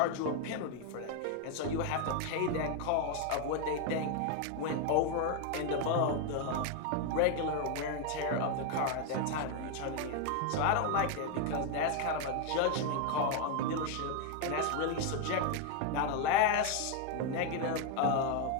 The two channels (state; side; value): different; both; correlation 0.01